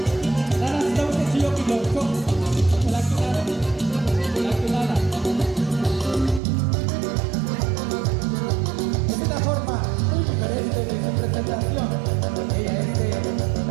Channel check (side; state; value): left; drops out; at 6.4 s